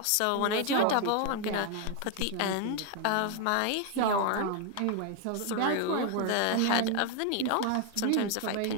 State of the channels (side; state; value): both; different; correlation 0.01